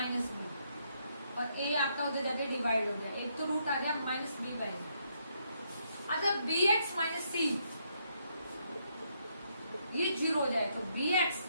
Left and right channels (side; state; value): both; inverted; correlation -0.75